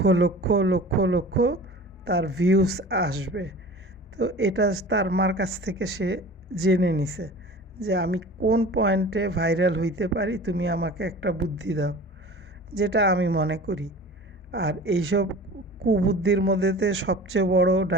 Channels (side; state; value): both; normal; correlation 0.39